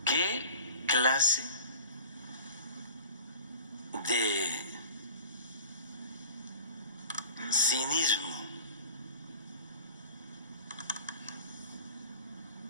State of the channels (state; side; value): inverted; both; correlation -0.41